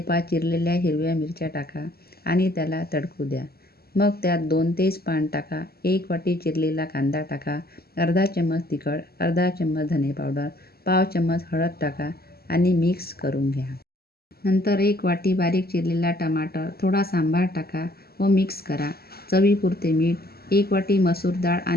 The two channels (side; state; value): right; late; 0.45 ms